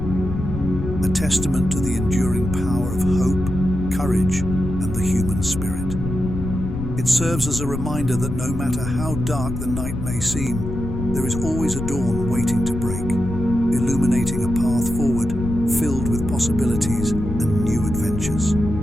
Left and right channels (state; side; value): noise; left; rumble, 5 dB below the sound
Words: A testament to the enduring power of hope, courage, and the human spirit. It serves as a reminder that no matter how dark the night may seem, there is always a dawn waiting to break, illuminating a path forward filled with possibilities and new adventures.